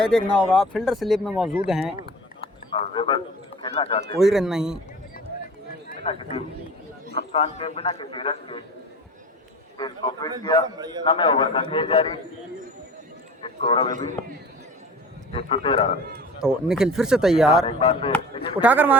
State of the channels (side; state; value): both; normal; correlation 0.39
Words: देखना होगा फील्डर स्लिप में मौजूद हैं, खेलना चाहते कोई रन नहीं। बिना किसी नुकसान के, बिना किसी रन के इसको फिट किया। 9वें ओवर का खेल जारी। स्कोर अभी भी 113 रन। तो निखिल फिर से तैयार, एक बार फिर उठाकर